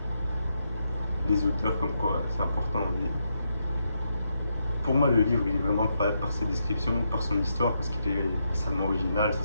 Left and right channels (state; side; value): inverted; both; correlation -0.81